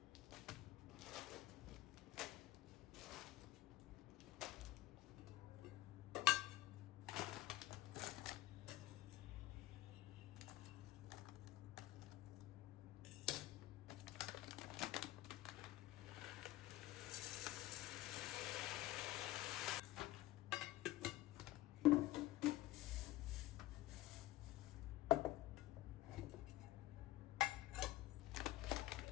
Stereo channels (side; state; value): right; quieter; 16.2 dB